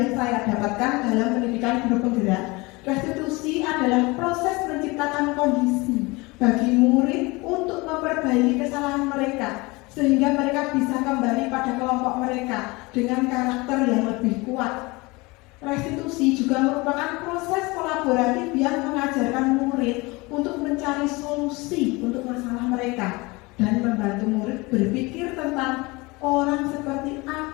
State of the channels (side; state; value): right; quieter; 24.3 dB